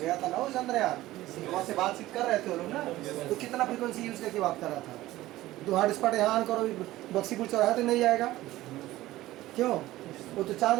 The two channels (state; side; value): quieter; left; 16.3 dB